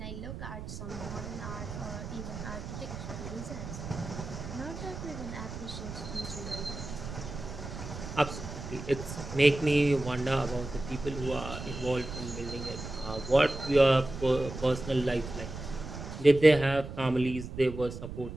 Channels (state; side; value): noise; right; rumble, 9 dB below the sound